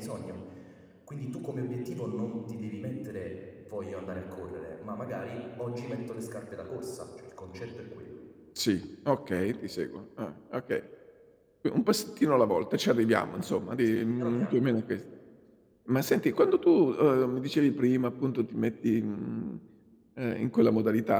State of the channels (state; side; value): identical; both; correlation 1.00